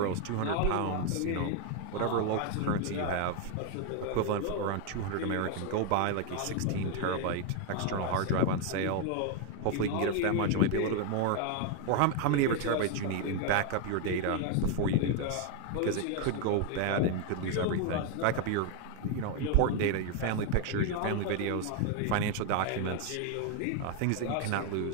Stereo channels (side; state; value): both; different; correlation 0.01